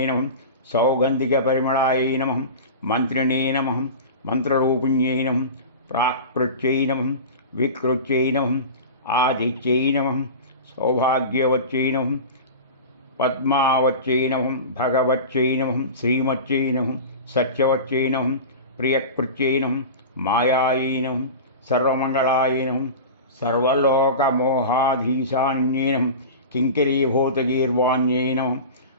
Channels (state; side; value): inverted; both; correlation -0.31